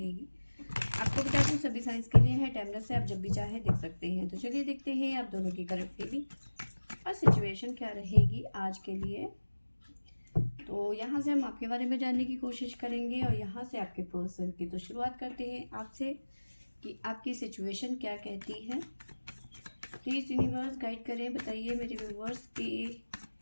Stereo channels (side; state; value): both; inverted; correlation -1.00